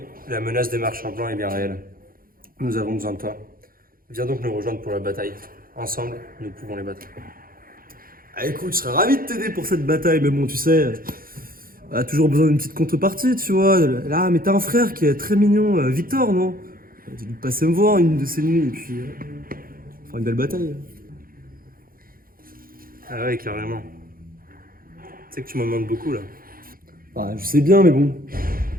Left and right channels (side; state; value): left; late; 0.42 ms